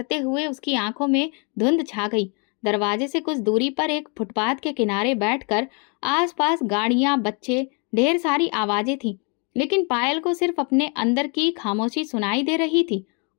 हुए उसकी आंखों में धुंध छा गई। दरवाजे से कुछ दूरी पर एक फुटपाथ के किनारे बैठकर आसपास गाड़ियां, बच्चे, ढेर सारी आवाजें थीं, लेकिन पायल को सिर्फ अपने अंदर की खामोशी सुनाई दे रही थी।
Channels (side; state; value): right; quieter; 35.2 dB